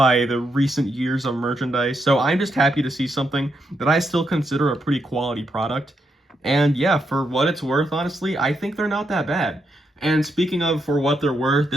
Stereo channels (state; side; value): normal; both; correlation 0.81